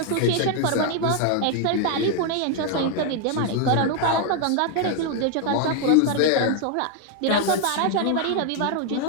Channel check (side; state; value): both; different; correlation 0.00